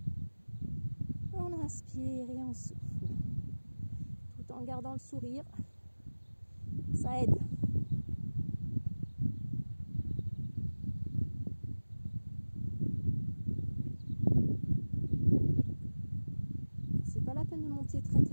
On inspire et on souffle. Tout en gardant le sourire. Ça aide. C'est pas la peine de monter très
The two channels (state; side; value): inverted; both; correlation -1.00